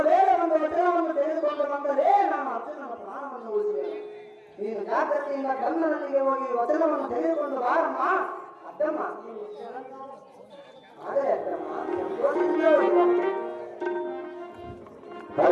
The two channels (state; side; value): identical; both; correlation 1.00